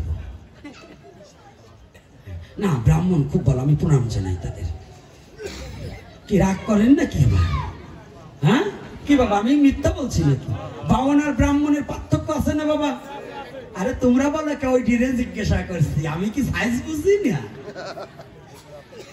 না। ব্রাহ্মণ খুব ভালো, আমি প্রণাম জানাই তাদের। কি রাগ করেন না কি? হ্যাঁ কি বাবা, আমি মিথ্যা বলছি নাকি? বাউন আর ব্রাহ্মণের পার্থক্য আছে না বাবা? আরে তোমরা বলো কে? ওই ডিরে জিজ্ঞাসা করছি, আমি কি সাইজ বুঝি না?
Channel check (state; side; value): identical; both; correlation 1.00